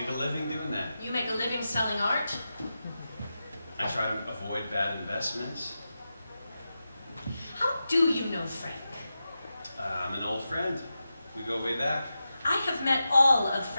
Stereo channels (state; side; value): inverted; both; correlation -0.91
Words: a living doing that? You make a living selling art? I try to avoid bad investments. How do you know Frank? I'm an old friend. We go way back. I have met all of